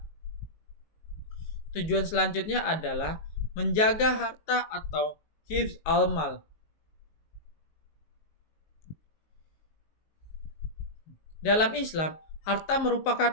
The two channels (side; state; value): right; late; 19 ms